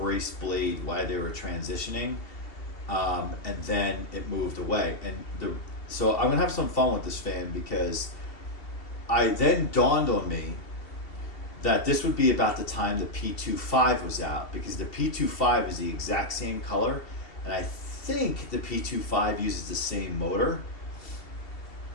blade while they were transitioning, and then it moved away. And So I'm gonna have some fun with this fan because I then dawned on me that this would be about the time the P25 was out, because the P25 is the exact same color, and I think the P25 uses the same motor.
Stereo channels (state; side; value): late; right; 2.7 ms